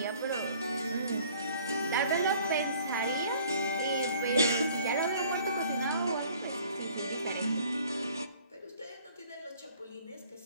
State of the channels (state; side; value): inverted; both; correlation -0.54